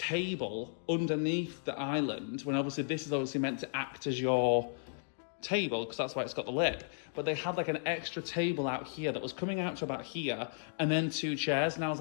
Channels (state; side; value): silent; right; digital silence